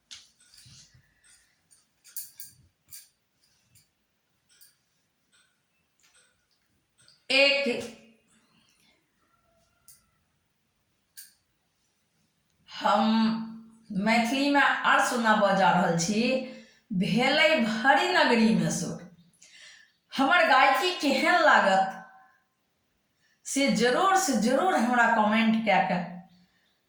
एक हम मैथिली में आर सुनाबऽ जा रहल छी, भेलै भरी नगरी में सुर। हमर गायकी केहन लागत से जरूर हमरा कमेंट कए के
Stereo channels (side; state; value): both; identical; correlation 1.00